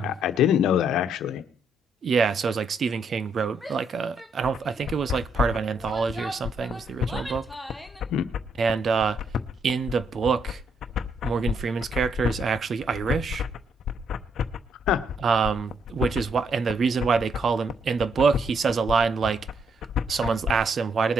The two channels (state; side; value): normal; both; correlation 0.74